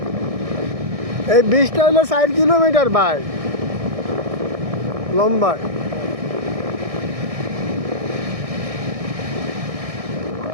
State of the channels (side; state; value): left; late; 1.6 ms